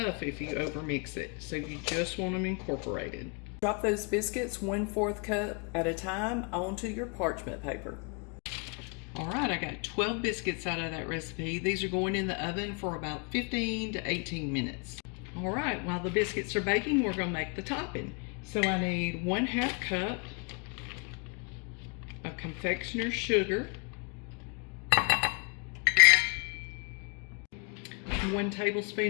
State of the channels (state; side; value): quieter; right; 36.4 dB